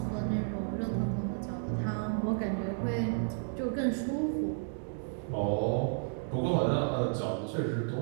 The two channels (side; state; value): left; silent; digital silence